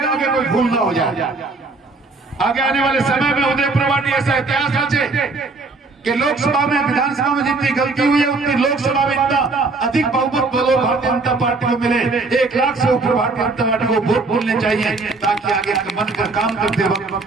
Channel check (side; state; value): left; quieter; 3.7 dB